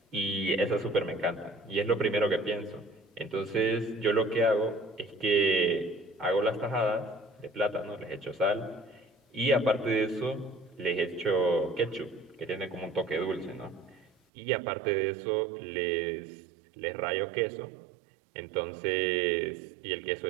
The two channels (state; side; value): drops out; left; at 14.1 s